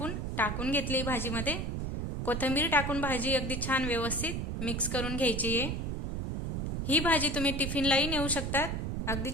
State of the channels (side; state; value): right; noise; rumble, 2 dB below the sound